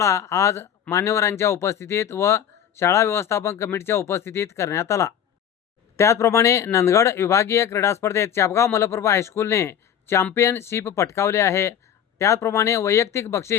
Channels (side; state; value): right; quieter; 9.3 dB